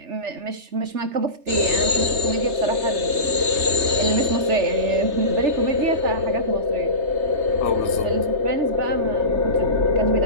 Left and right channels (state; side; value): late; left; 3.3 ms